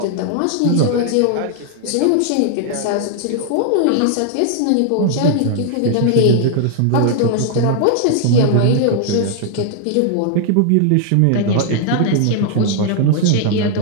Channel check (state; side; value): different; both; correlation 0.00